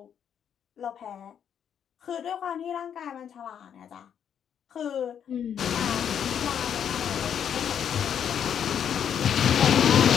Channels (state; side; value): quieter; right; 8.6 dB